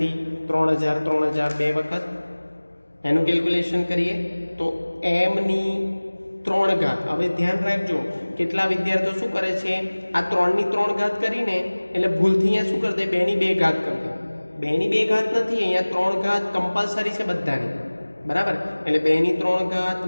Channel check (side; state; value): both; inverted; correlation -1.00